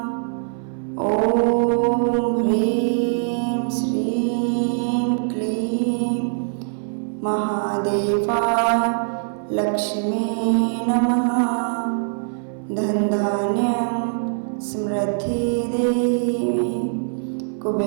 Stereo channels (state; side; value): silent; left; 64 dB below the other